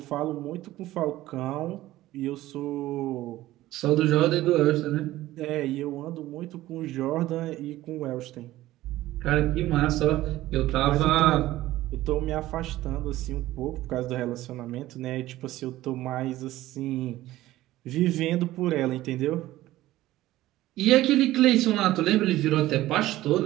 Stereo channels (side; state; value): left; quieter; 15.9 dB